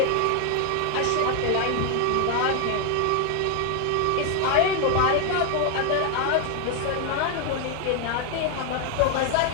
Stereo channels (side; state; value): both; different; correlation 0.00